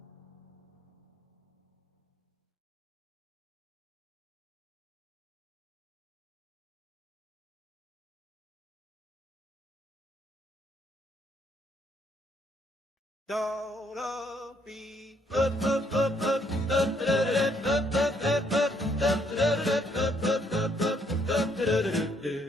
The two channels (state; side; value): normal; both; correlation 0.70